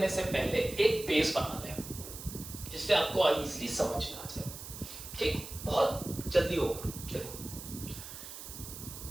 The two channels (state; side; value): noise; right; hiss, 11 dB below the sound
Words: से पहले एक बेस बना लें जिससे आपको इजीली समझ में आ जाए। ठीक, बहुत जल्दी होगा। देखो,